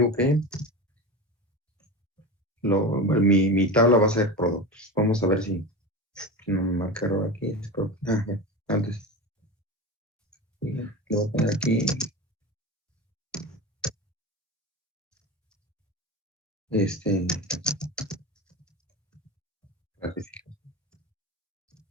que mi tabla va a ser productos. Vamos a ver si no me marca error aquí. Antes. Le voy a poner aquí clasificación.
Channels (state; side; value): normal; both; correlation 0.26